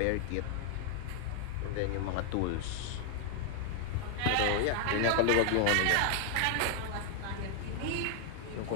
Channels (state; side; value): different; both; correlation 0.00